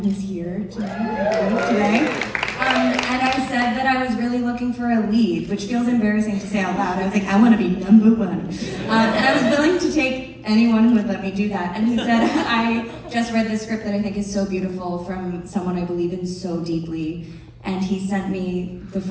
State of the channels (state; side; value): identical; both; correlation 1.00